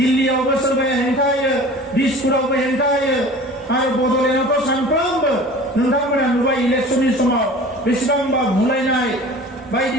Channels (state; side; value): normal; both; correlation 0.42